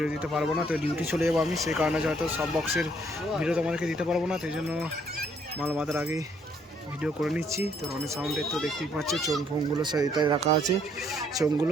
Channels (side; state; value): both; normal; correlation 0.67